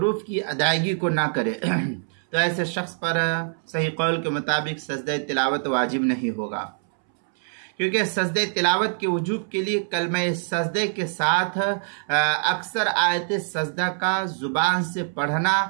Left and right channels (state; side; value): silent; left; 62 dB below the other